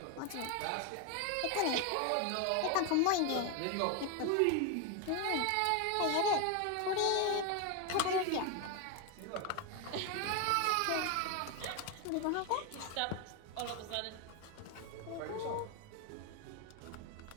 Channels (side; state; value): both; different; correlation 0.01